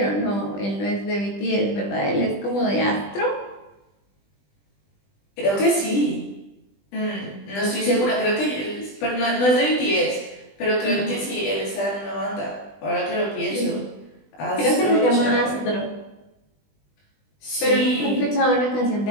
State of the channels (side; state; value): right; late; 20 ms